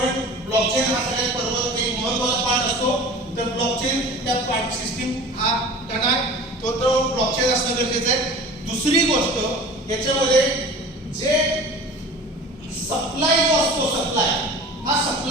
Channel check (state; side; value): normal; both; correlation 0.40